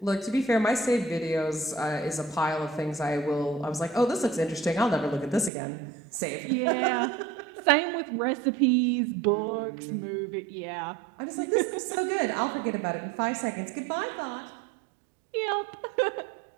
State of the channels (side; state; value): left; drops out; at 5.5 s